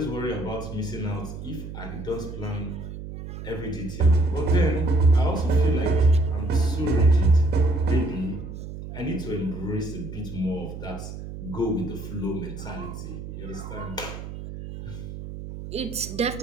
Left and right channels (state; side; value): noise; right; hum, 10 dB below the sound